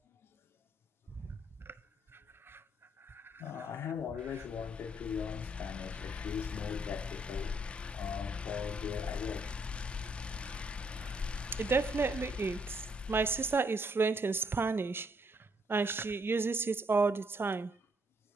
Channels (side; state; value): both; normal; correlation 0.71